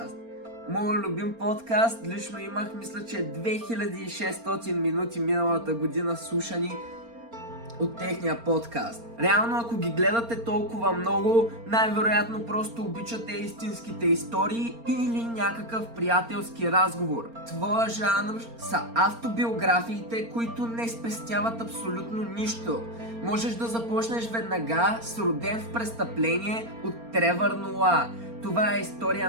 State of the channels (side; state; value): left; late; 4.3 ms